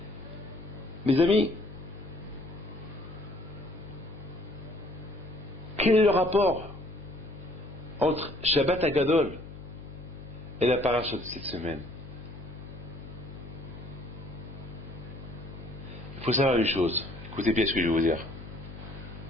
Mes amis, quel est le rapport entre Shabbat Agadol et la paracha de cette semaine? Il faut savoir une chose. Écoutez bien ce que je vais vous dire.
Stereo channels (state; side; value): noise; left; hum, 12 dB below the sound